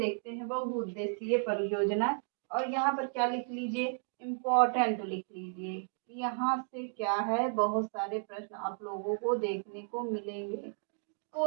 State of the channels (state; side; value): silent; left; 55 dB below the other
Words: हैं। बहुउद्देशीय परियोजना, और यहाँ पर क्या लिख लीजिए, इम्पोर्टेंट लिख लीजिए। यहाँ से क्या है, बहुत सारे प्रश्न आप लोगों को देखने को मिलेंगे।